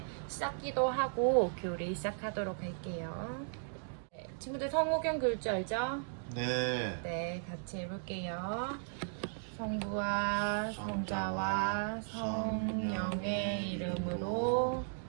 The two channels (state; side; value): silent; left; digital silence